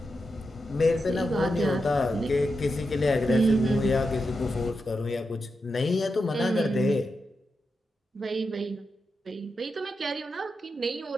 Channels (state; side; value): normal; both; correlation 0.87